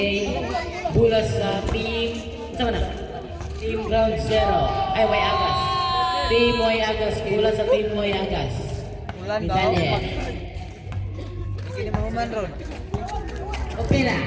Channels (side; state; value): both; identical; correlation 1.00